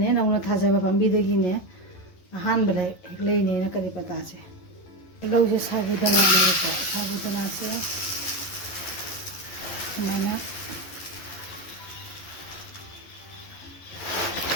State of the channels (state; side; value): late; right; 11 ms